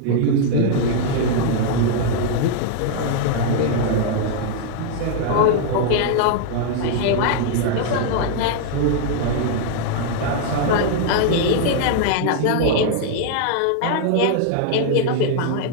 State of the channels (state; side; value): different; both; correlation 0.00